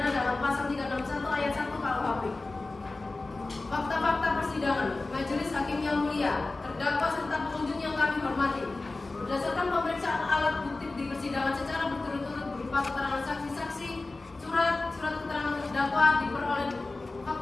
dalam pasal 361 ayat 1 KUHP. Fakta-fakta persidangan, Majelis Hakim yang mulia, terdakwa serta pengunjung yang kami hormati. Berdasarkan pemeriksaan alat bukti di persidangan secara berturut-turut berupa keterangan saksi-saksi, surat keterangan terdakwa diperoleh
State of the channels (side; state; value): right; quieter; 3.3 dB